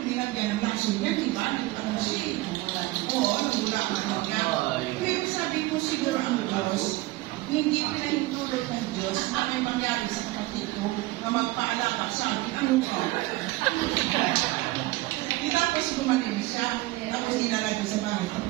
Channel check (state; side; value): quieter; left; 19.4 dB